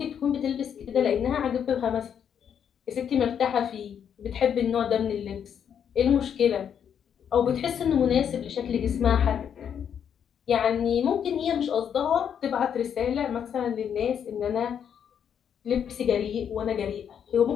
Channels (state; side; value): quieter; right; 8.3 dB